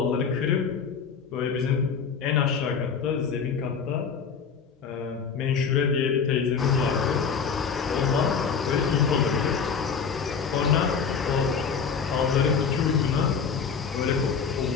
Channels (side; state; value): right; quieter; 6.1 dB